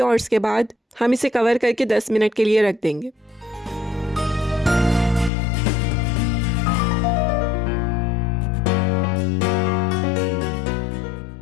और इसके बाद हम इसे कवर करके 10 मिनट के लिए रख देंगे।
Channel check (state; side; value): drops out; right; at 5.3 s